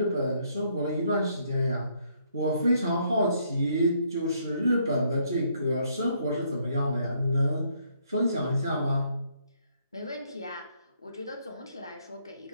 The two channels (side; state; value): both; inverted; correlation -0.70